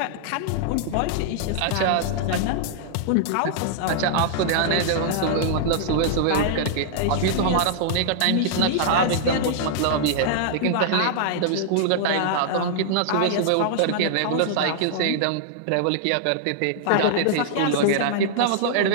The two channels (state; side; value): different; both; correlation -0.01